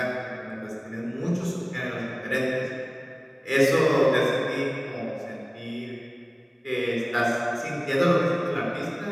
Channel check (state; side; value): identical; both; correlation 1.00